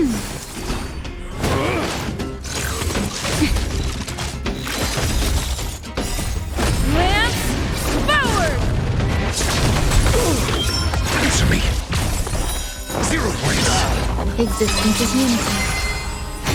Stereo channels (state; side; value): identical; both; correlation 1.00